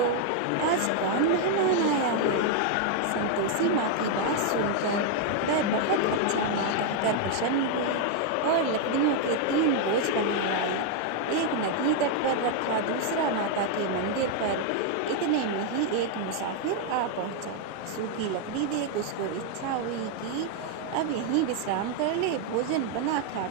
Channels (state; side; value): different; both; correlation 0.00